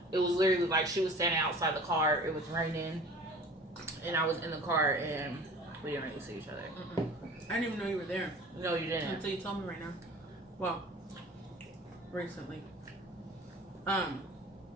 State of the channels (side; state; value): both; normal; correlation 0.43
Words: it was literally like she was standing outside the car. It was raining, and I was in the car, and we didn't really see each other. Mm-mm. I didn't even know you were there. No, you didn't. Until you told me right now. Well, recently.